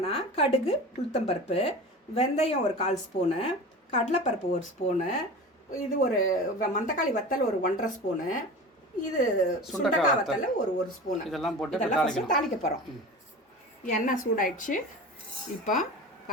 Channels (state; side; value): normal; both; correlation 0.33